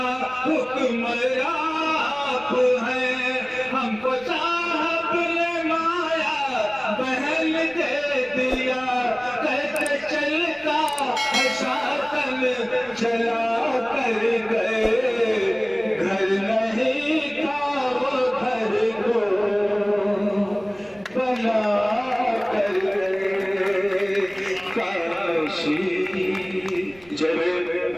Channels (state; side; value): noise; right; rumble, 26 dB below the sound